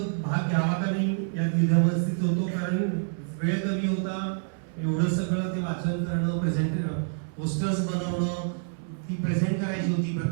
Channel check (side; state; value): left; silent; 60 dB below the other